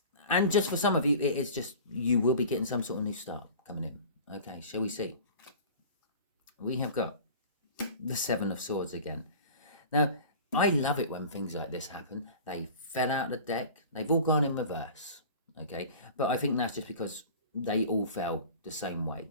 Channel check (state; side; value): inverted; both; correlation -0.40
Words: And just for some of you, it is just, you will be getting some sort of new start coming in. Okay, shall we see? We have got the Seven of Swords again. Now, I love it when things like this happen. They fell out of the deck. They've all gone in reverse. Okay, but I think that's just because they all fell the same way.